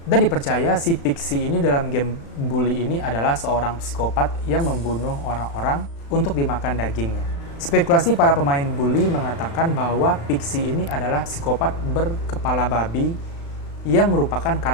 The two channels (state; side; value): late; right; 35 ms